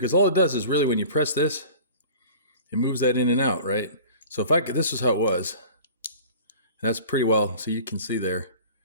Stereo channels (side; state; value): both; inverted; correlation -0.42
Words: all it does is really when you press this, it moves that in and out, right? So if I could, this is how it was. And that's pretty well. So you can see there,